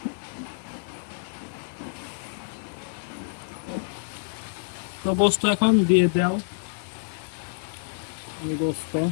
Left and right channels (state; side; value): silent; right; 55 dB below the other